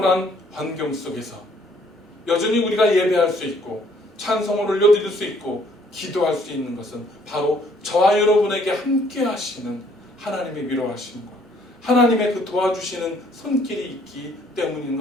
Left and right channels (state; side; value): normal; both; correlation 0.63